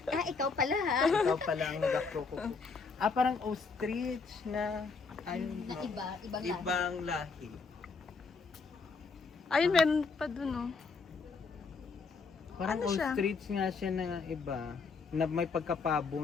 Ah, ikaw pala ha. Ikaw pala ang nag-akroko. Ah, parang ostrich na ayun, Na ibang lahi. ibang lahi. Ayun, meron pa dun oh. Parang Ano siya? ostrich nga siya na iba na may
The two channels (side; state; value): right; quieter; 4.7 dB